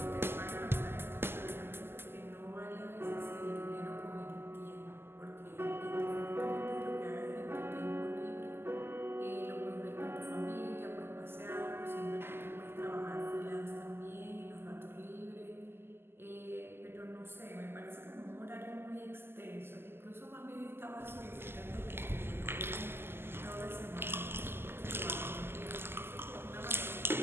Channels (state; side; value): late; left; 0.11 ms